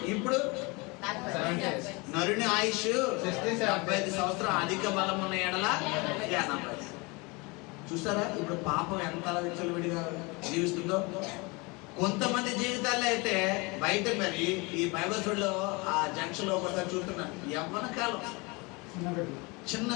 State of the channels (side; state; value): right; quieter; 27.0 dB